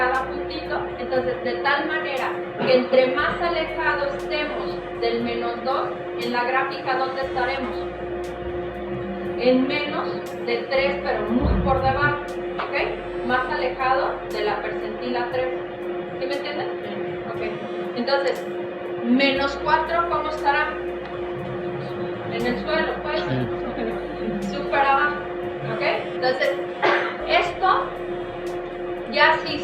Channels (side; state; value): both; identical; correlation 1.00